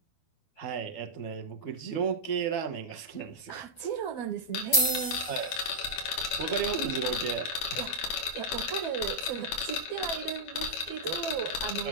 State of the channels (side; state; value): right; late; 12 ms